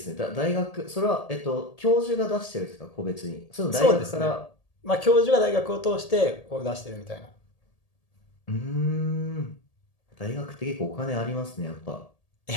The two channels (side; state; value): right; late; 1.8 ms